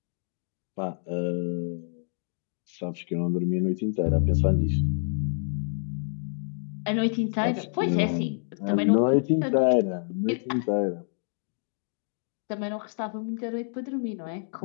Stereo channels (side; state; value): right; silent; 59 dB below the other